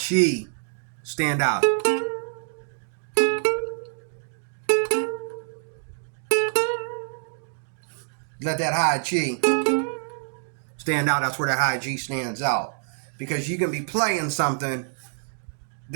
stand out. Let that high G stand out. That's where the high G stands out, because you can be playing something.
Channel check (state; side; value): silent; left; digital silence